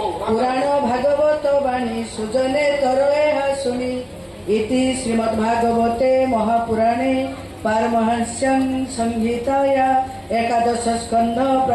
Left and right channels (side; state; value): both; identical; correlation 1.00